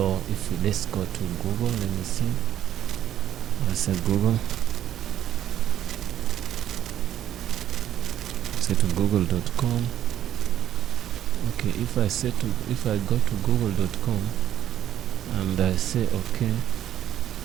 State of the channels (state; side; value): quieter; left; 11.3 dB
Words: let's go to Google. Let me see. I said Google. Say to google.com. Okay, if I go to google.com and I say okay,